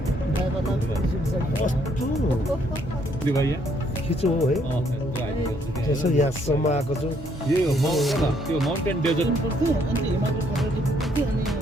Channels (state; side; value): normal; both; correlation 0.69